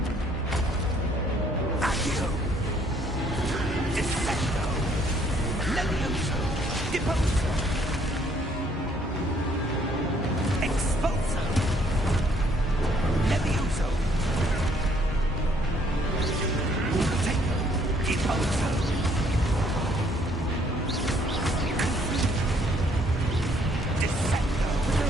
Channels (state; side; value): normal; both; correlation 0.65